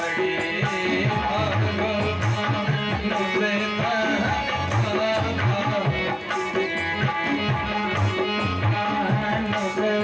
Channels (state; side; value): identical; both; correlation 1.00